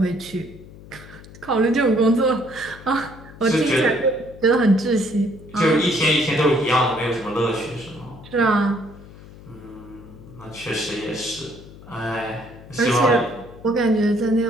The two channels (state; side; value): noise; left; hum, 19 dB below the sound